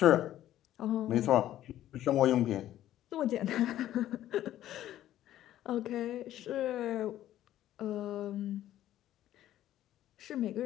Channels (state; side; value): quieter; right; 12.8 dB